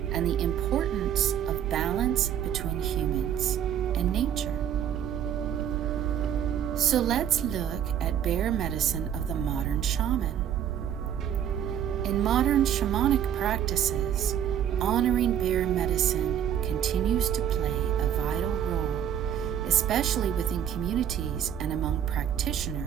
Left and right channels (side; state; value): left; quieter; 9.7 dB